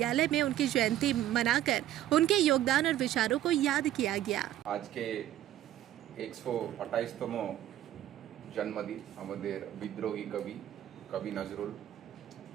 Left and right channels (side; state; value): left; quieter; 12.8 dB